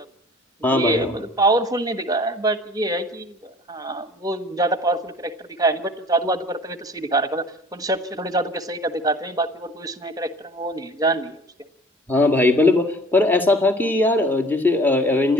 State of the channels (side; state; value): both; normal; correlation 0.48